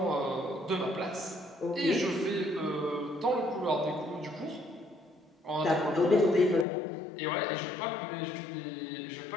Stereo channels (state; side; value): drops out; right; at 6.7 s